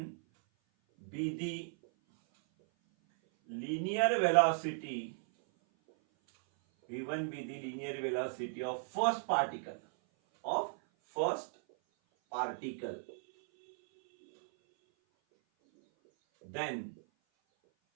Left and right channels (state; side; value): silent; left; 54 dB below the other